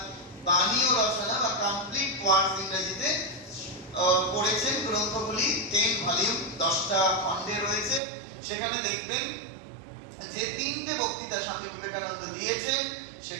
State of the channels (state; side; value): drops out; left; at 8.0 s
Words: বাণী ও রচনা বা কমপ্লিট ওয়ার্ডস ইংরেজিতে পড়েছেন, গ্রন্থগুলি 10 ভলিউম 10টা খণ্ডে রয়েছে, সেখানে দেখবেন যে 3টে বক্তৃতা স্বামী বিবেকানন্দ দিয়েছেন